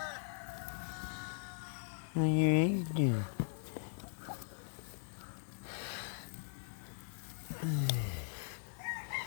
How your eggs doing?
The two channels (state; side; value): silent; right; digital silence